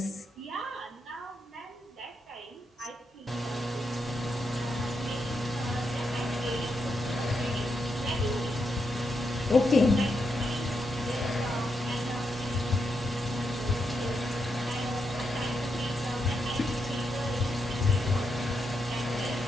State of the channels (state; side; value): normal; both; correlation 0.82